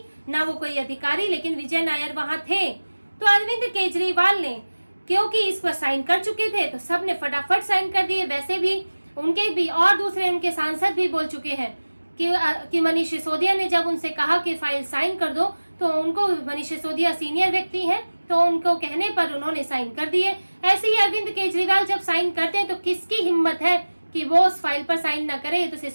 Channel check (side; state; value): both; inverted; correlation -1.00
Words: ना वो कोई अधिकारी, लेकिन विजय नायर वहां थे। तो अरविंद केजरीवाल ने, क्योंकि इस पर साइन कर चुके थे, तो सब ने फटाफट साइन कर दिए। वैसे भी उनके भी और दूसरे उनके सांसद भी बोल चुके हैं कि मनीष सिसोदिया ने जब उनसे कहा कि फाइल साइन कर दो, तो उनको, मनीष सिसोदिया सीनियर व्यक्ति हैं, तो उनको कहने पर उन्होंने साइन कर दिए। ऐसे ही अरविंद केजरीवाल जब साइन करते हैं तो किसकी हिम्मत है कि वो उस फाइल पर साइन ना करे तो